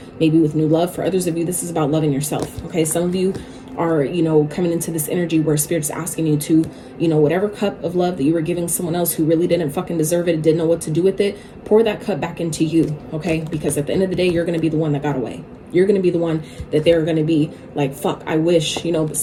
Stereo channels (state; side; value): identical; both; correlation 1.00